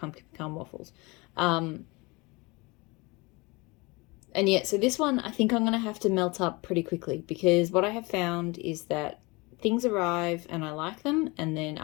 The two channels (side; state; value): right; quieter; 25.5 dB